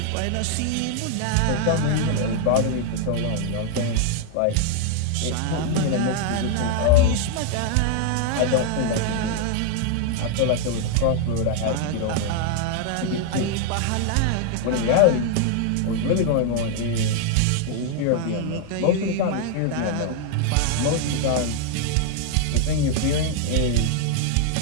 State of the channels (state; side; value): different; both; correlation 0.00